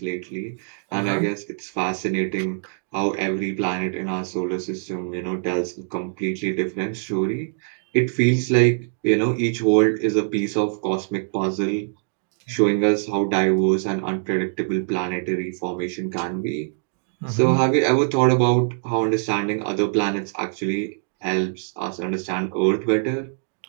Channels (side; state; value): left; silent; digital silence